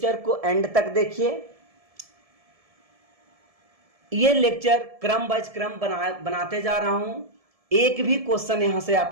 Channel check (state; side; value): late; left; 1.7 ms